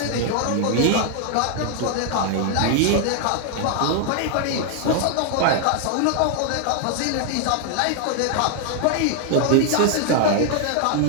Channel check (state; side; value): different; both; correlation 0.00